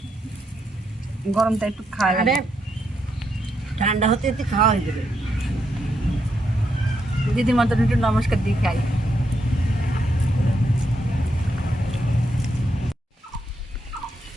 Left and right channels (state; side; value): normal; both; correlation 0.80